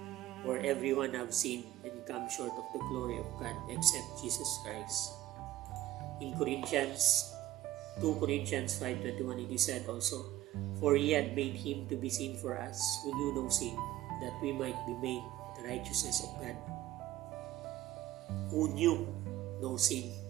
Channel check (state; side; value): quieter; left; 15.0 dB